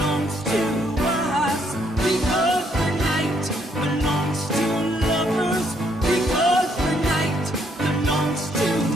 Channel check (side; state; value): both; normal; correlation 0.71